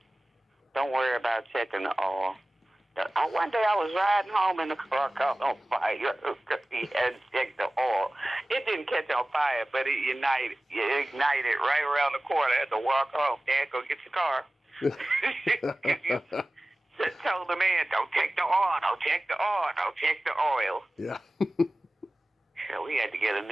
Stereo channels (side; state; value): both; normal; correlation 0.97